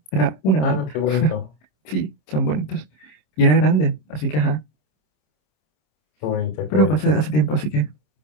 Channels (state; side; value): late; right; 26 ms